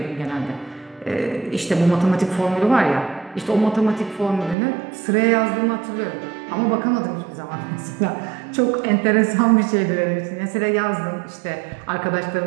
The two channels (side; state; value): left; drops out; at 4.5 s